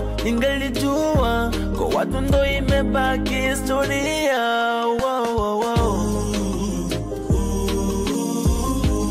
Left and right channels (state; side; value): identical; both; correlation 1.00